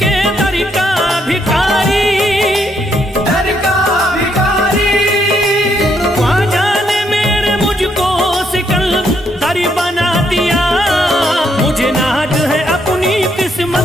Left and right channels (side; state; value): both; normal; correlation 0.74